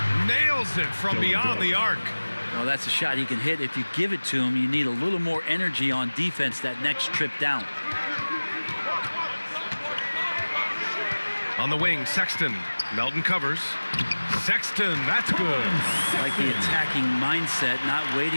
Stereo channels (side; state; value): both; inverted; correlation -1.00